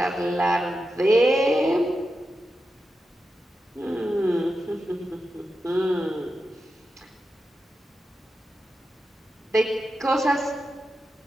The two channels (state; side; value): normal; both; correlation 0.90